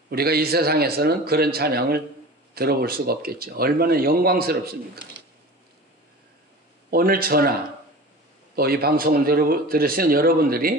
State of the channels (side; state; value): both; normal; correlation 0.36